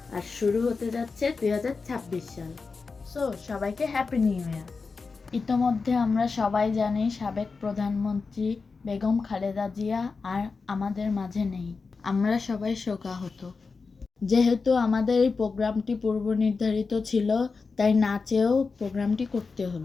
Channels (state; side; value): quieter; right; 4.5 dB